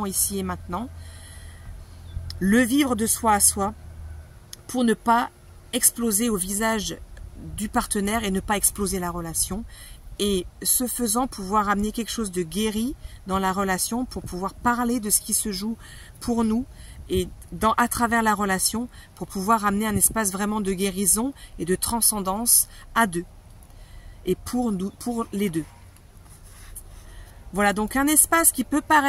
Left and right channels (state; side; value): identical; both; correlation 1.00